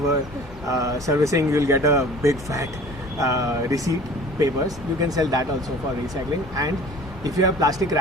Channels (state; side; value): normal; both; correlation 0.45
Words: servicing, you'll get a big fat receipt papers. You can sell that also for recycling. And if you have plastic